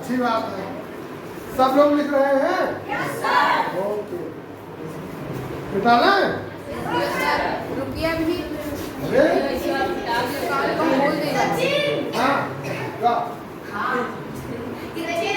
बात है। सब लोग लिख रहे हैं, ओके निकाला है। रुकिए अभी बोल देगा। हाँ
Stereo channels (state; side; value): identical; both; correlation 1.00